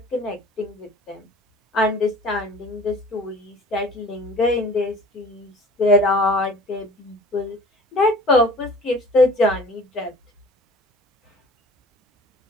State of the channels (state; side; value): normal; both; correlation 0.46